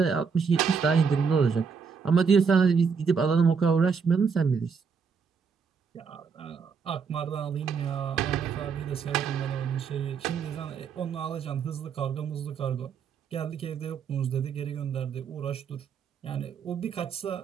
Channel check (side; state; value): left; quieter; 5.9 dB